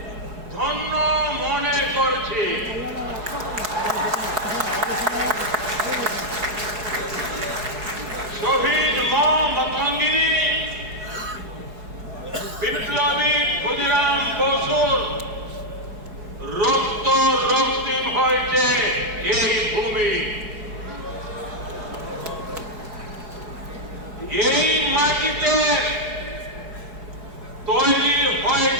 ধন্য মনে করছি। শহীদ মতঙ্গিনী, বিপ্লবী ক্ষুদিরাম বসুর রক্ত রক্তিম হয়েছে এই ভূমি। এই মাটিতে তৈরি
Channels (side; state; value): left; late; 4.7 ms